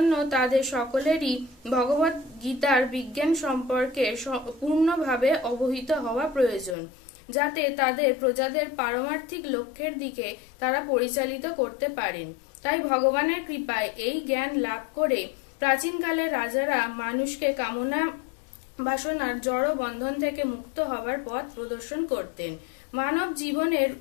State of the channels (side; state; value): right; drops out; at 6.8 s